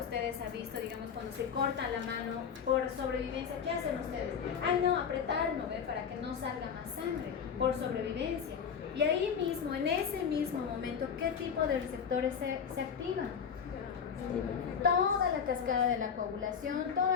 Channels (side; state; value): right; quieter; 7.1 dB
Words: han visto, digamos, cuando se corta la mano por sobrevivencia, ¿qué hacen ustedes? Ay, no, apretarlo, ¿ve? Para que no salga más sangre, por sobrevivencia. Y ahí mismo, en ese mismo momento, ¿qué tipo de receptores se activan? Toda la cascada de la coagulación,